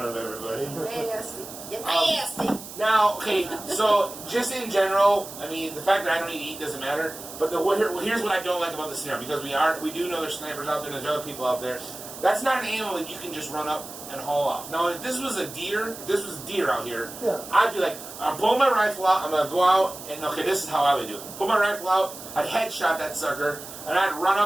of everybody. Nasty. You're nasty. Now, okay, so just in general, I mean, the fact that I don't need to eat doesn't matter. But here's what I don't like about the snare, because we do know there's snipers out there, there's other people out there. That's not an animal that you can just run up and haul off. Now, if this was a deer, if this was deer out here, Yeah. I'd be like, I'm pulling my rifle out, I'm gonna go out, and okay, this is how I would do it. Pull my rifle out, I'd headshot that sucker, and I'd run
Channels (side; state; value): right; noise; hiss, 13 dB below the sound